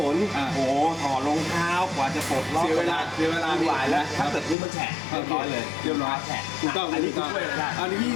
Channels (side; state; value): right; drops out; at 4.5 s